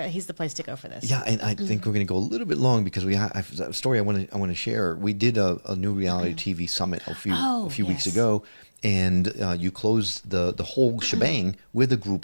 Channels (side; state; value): both; inverted; correlation -1.00